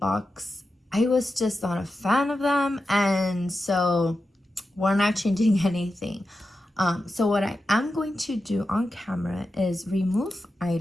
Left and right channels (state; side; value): normal; both; correlation 0.91